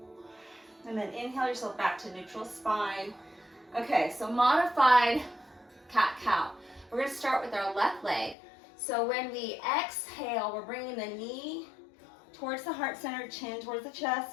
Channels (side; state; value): right; drops out; at 8.3 s